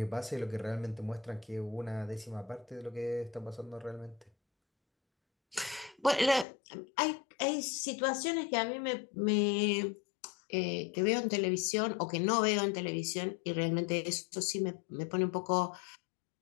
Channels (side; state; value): right; drops out; at 6.5 s